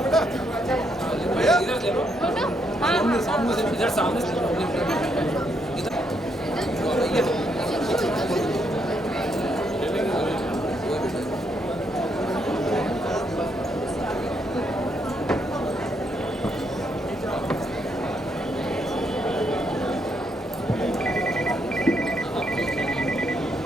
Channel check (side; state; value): both; normal; correlation 0.76